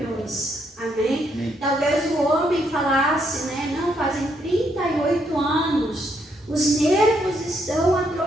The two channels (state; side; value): normal; both; correlation 0.74